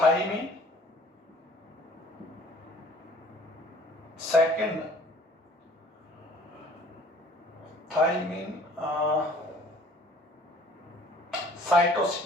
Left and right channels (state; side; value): normal; both; correlation 0.53